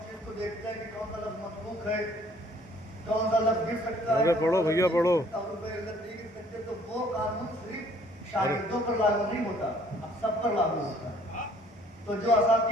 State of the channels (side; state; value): both; normal; correlation 0.59